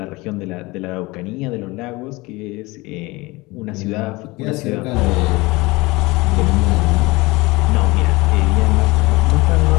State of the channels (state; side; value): quieter; right; 22.5 dB